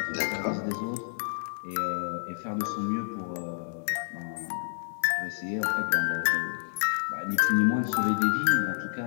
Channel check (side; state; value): right; silent; digital silence